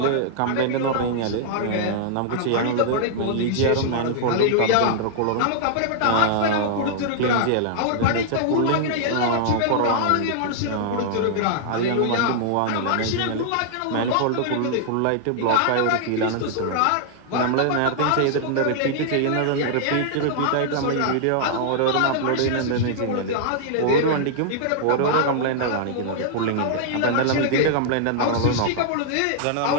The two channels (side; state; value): both; different; correlation -0.01